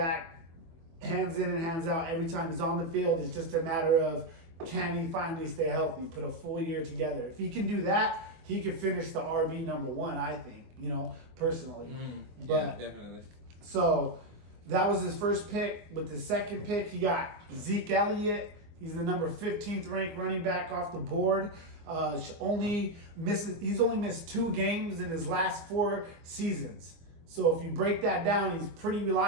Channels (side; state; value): left; late; 24 ms